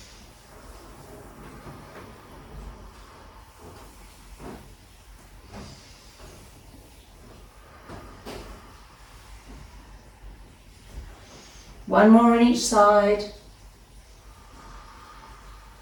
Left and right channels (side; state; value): both; identical; correlation 1.00